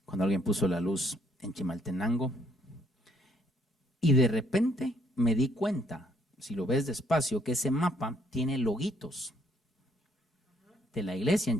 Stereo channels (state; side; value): normal; both; correlation 0.67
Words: cuando alguien puso la luz en Chimaltenango. Y de repente me di cuenta, si lo ves despacio, que ese mapa tiene loguitos de la iglesia